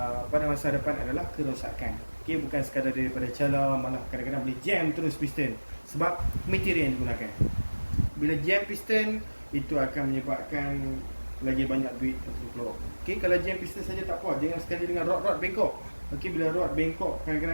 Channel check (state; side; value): inverted; both; correlation -1.00